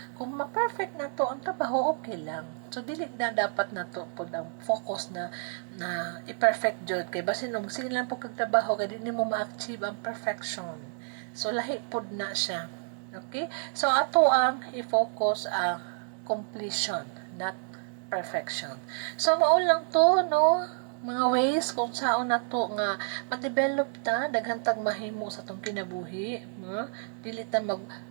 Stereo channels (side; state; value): left; silent; 58 dB below the other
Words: Kung ma-perfect na to ang trabaho, okay lang. So dili na dapat na to pod ang focus na i-perfect jud kay basin og sige lang po kag trabaho kay di mo ma-achieve ang perfection. So lahi pod na siya. Okay? So ato ang i-focus ang completion, not perfection. So mao lang to, no? Mga ways kung saan na to nga ma-develop ta daghan tag mahimo sa tong kinabuhi, no? Dili ta